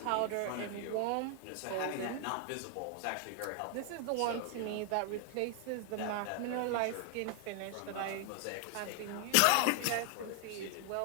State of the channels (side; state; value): both; different; correlation 0.00